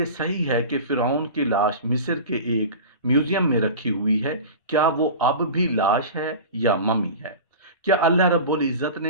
सही है कि फिरौन की लाश मिस्र के एक म्यूजियम में रखी हुई है? क्या वो अब भी लाश है या ममी है? क्या अल्लाह रब्बुल इज़्ज़त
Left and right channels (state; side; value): inverted; both; correlation -0.33